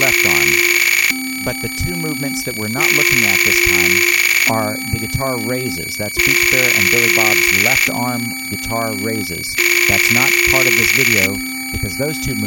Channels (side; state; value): both; identical; correlation 1.00